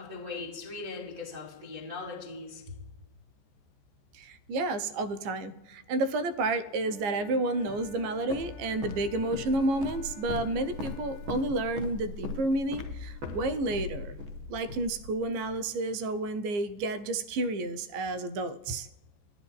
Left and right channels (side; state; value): left; late; 15 ms